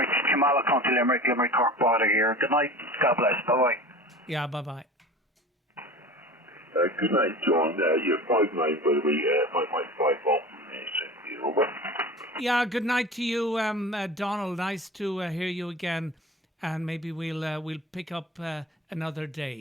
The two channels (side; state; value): both; normal; correlation 0.36